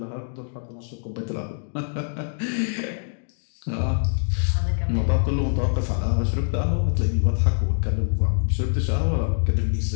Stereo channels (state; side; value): silent; right; digital silence